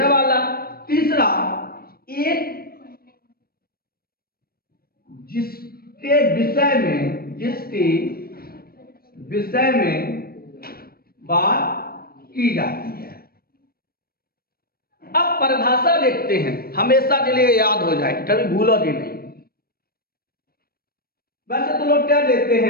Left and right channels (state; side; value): late; right; 0.44 ms